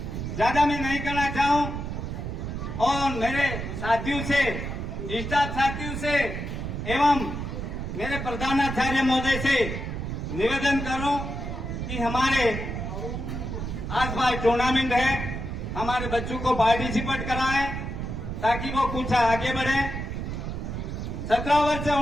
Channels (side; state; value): right; noise; rumble, 5 dB below the sound